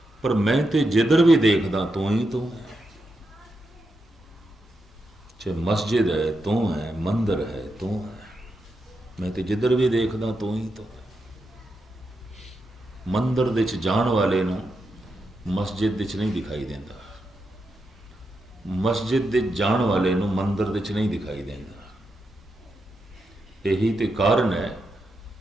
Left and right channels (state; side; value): normal; both; correlation 0.85